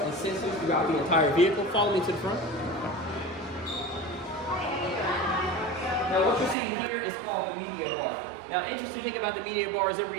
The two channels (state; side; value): drops out; left; at 6.6 s